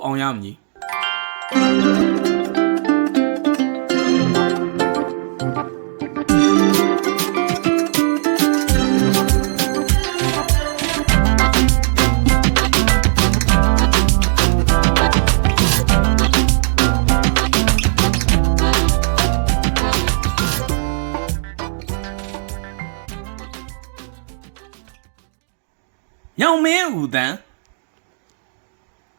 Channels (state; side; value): silent; left; digital silence